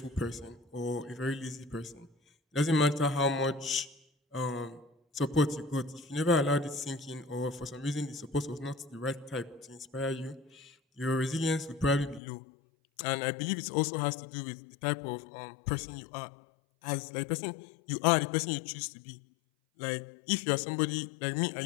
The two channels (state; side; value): drops out; right; at 12.2 s